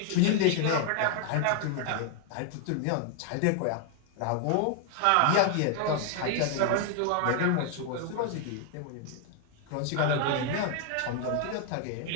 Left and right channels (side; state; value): both; different; correlation 0.00